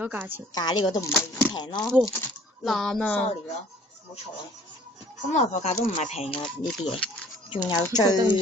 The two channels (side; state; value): both; normal; correlation 0.54